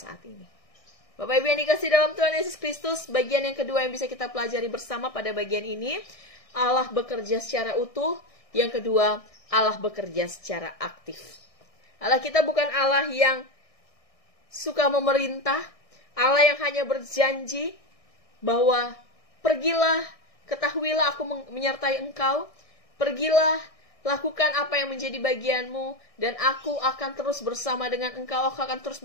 ini. Bapak Ibu yang dikasih dalam Tuhan Yesus Kristus, bagian yang kedua yang bisa kita pelajari bersama pada bagian ini, Allah bekerja secara utuh. Yang kedua, Allah bekerja secara aktif. Allah kita bukan Allah yang suka memerintah, Allah yang hanya berjanji bahwa pergilah, ketahuilah aku menyertai engkau, pergilah, lakukan apa yang menjadi bagianmu, dan aku akan terus bersama dengan engkau, aku akan terus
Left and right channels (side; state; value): right; late; 1.6 ms